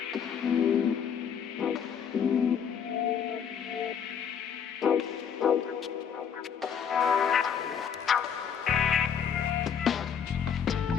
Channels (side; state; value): right; quieter; 7.6 dB